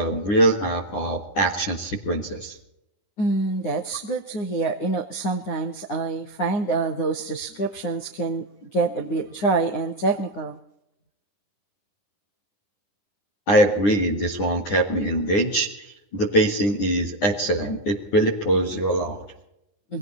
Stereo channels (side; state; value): right; late; 9.9 ms